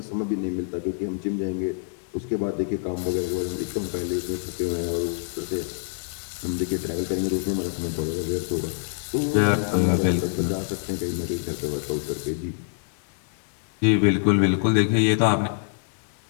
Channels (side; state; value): right; silent; digital silence